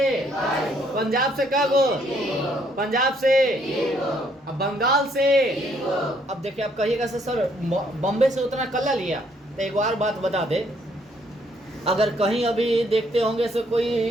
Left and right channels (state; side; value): normal; both; correlation 0.68